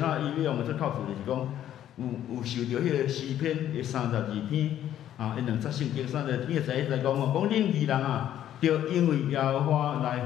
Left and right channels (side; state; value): right; quieter; 11.4 dB